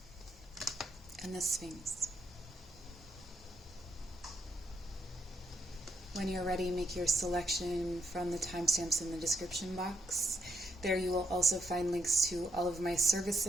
And the Sphinx. When you're ready, make your selection from the timestamps in the description box. There you will also find links to all of my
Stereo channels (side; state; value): both; normal; correlation 0.78